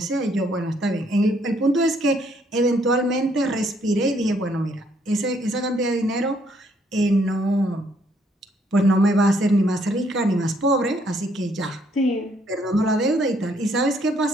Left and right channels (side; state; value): both; normal; correlation 0.69